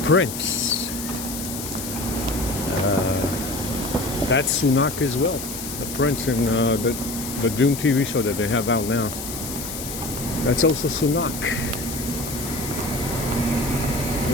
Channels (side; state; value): left; noise; hiss, 8 dB below the sound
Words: Prince, that's Sunak as well. The Prince in the Doom TV show that they have out now, that's also Sunak.